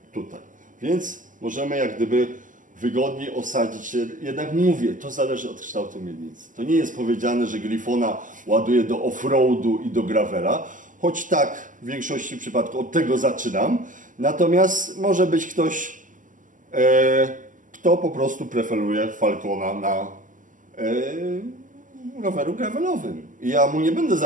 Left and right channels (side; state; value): left; late; 0.38 ms